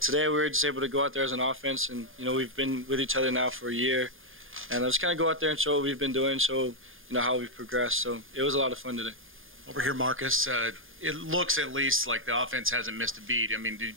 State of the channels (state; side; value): late; left; 0.59 ms